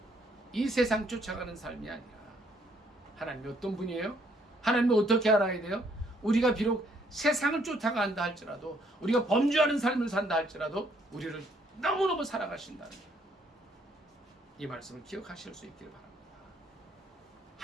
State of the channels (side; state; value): both; normal; correlation 0.68